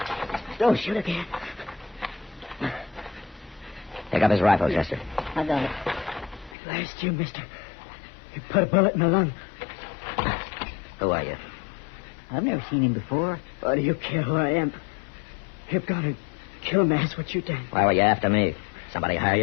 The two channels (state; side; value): drops out; right; at 6.6 s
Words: Don't shoot again. Pick up his rifle, Chester. I got it. Last you, mister. You put a bullet in my lung. Who are you? I've never seen him before. Why do you care who I am? You're gonna kill me, that's what you done. Why were you after me? Somebody hire